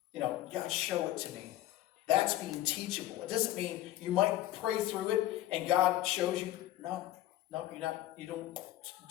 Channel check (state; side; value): quieter; right; 14.5 dB